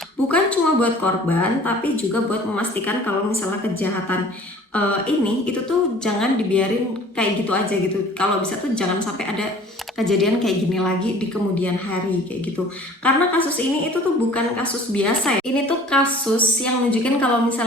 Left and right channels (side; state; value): both; normal; correlation 0.49